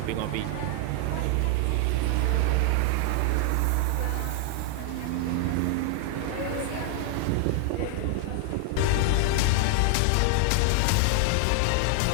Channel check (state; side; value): different; both; correlation 0.00